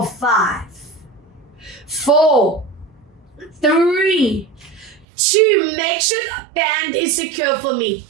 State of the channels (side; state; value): left; drops out; at 5.1 s